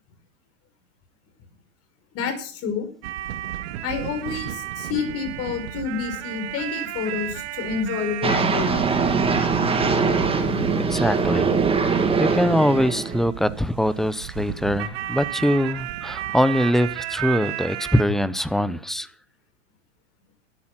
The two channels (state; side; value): normal; both; correlation 0.60